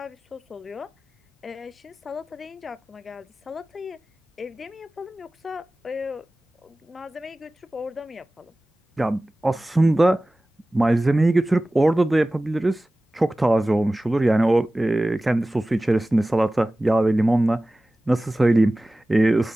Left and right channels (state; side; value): normal; both; correlation 0.97